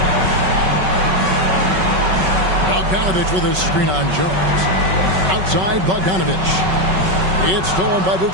Bogdanovich with a screen on Jones. Outside Bogdanovich. It's stolen by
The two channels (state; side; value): late; left; 5.3 ms